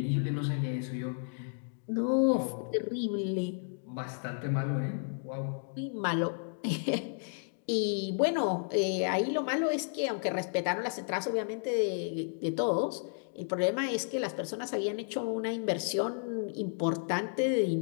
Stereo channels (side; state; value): right; silent; digital silence